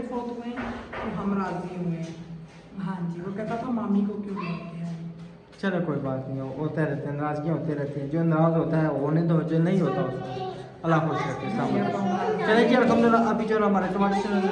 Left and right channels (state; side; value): identical; both; correlation 1.00